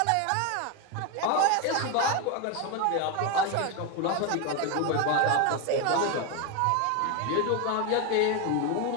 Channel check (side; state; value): both; different; correlation 0.02